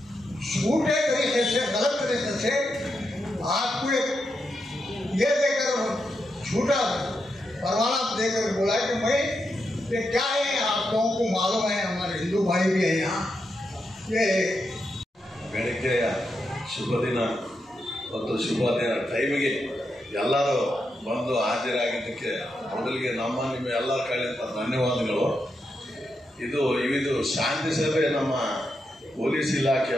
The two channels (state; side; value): normal; both; correlation 0.84